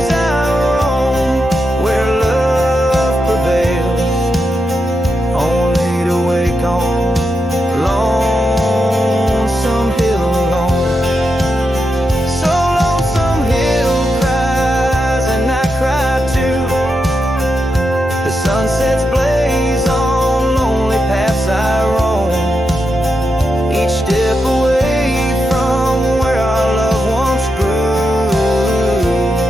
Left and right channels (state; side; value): normal; both; correlation 0.86